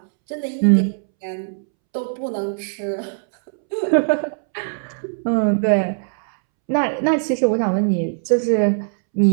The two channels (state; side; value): silent; left; 66 dB below the other